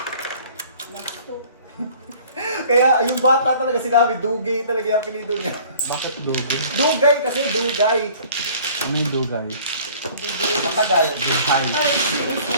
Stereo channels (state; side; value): inverted; both; correlation -0.51